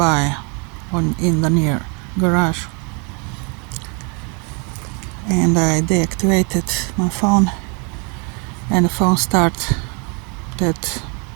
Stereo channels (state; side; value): quieter; left; 34.7 dB